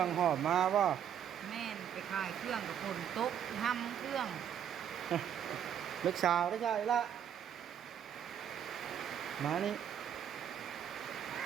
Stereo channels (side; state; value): left; quieter; 9.2 dB